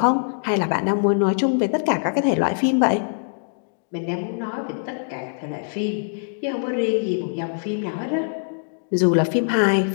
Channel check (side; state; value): right; silent; digital silence